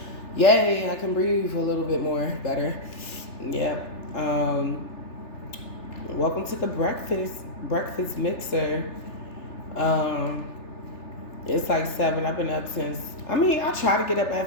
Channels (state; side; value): late; right; 3.4 ms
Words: yay, I can breathe a little bit more better. Yeah. Welcome to the breakfast mixer. It's like 7. I've been up since. I tried to get up